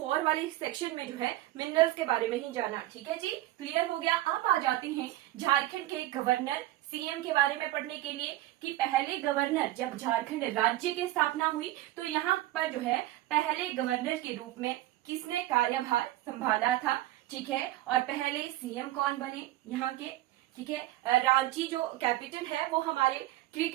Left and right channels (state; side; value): quieter; left; 16.1 dB